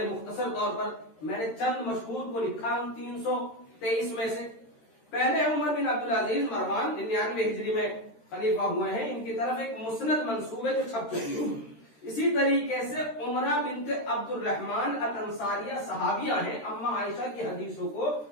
مختصر طور پر میں نے چند مشہور کو لکھا ان 323 میں سے۔ پہلے عمر بن عبدالعزیز مروان 99 ہجری میں خلیفہ ہوئے ہیں، ان کی طرف ایک مسند منسوب ہے جو چھپ چکی ہے۔ اسی طریقے سے عمرہ بنت عبد الرحمن الانصاریہ صحابیہ ہیں، اما عائشہ کی حدیثوں کو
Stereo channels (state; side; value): late; right; 13 ms